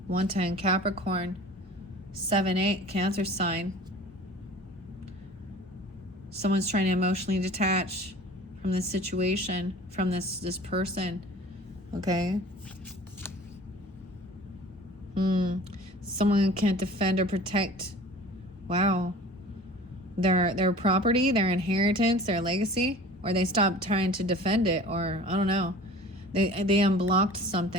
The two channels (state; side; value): normal; both; correlation 0.43